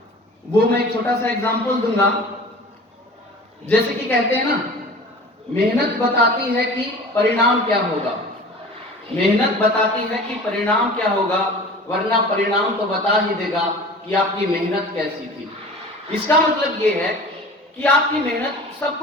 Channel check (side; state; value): both; normal; correlation 0.40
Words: वो मैं एक छोटा सा एग्जांपल दूंगा। जैसे कि कहते हैं ना, मेहनत बताती है कि परिणाम क्या होगा। मेहनत बताती है कि परिणाम क्या होगा, वरना परिणाम तो बता ही देगा कि आपकी मेहनत कैसी थी। इसका मतलब ये है कि आपकी मेहनत सब